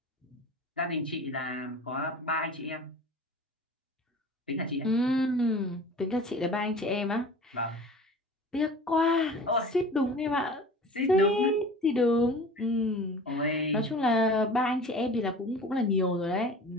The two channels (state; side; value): normal; both; correlation 0.40